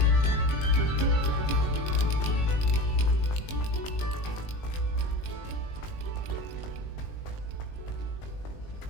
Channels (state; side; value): late; right; 20 ms